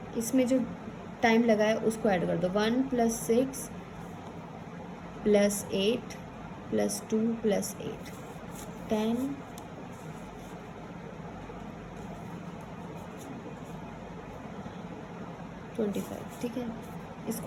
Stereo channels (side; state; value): both; identical; correlation 1.00